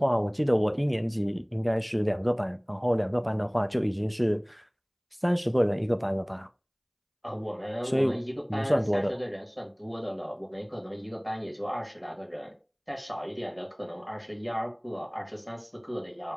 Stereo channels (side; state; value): both; identical; correlation 1.00